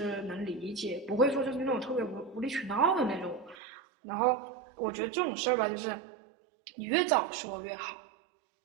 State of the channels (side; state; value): left; drops out; at 3.6 s